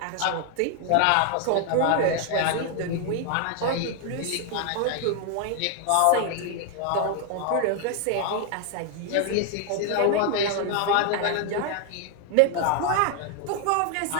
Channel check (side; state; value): both; different; correlation 0.00